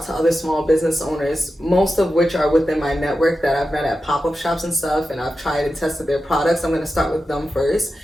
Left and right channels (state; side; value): normal; both; correlation 0.91